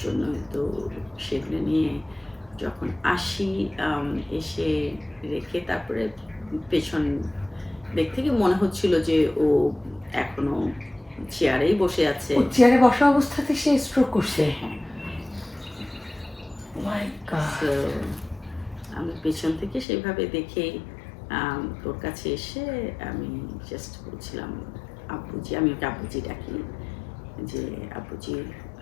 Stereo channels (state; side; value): drops out; right; at 19.9 s